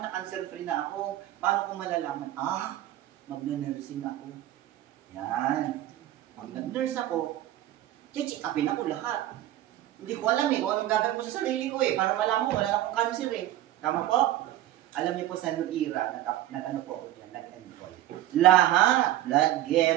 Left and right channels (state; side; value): quieter; left; 13.9 dB